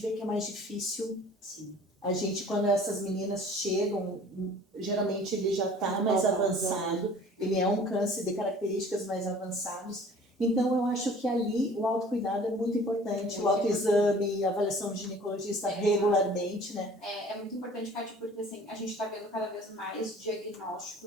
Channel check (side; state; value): both; normal; correlation 0.48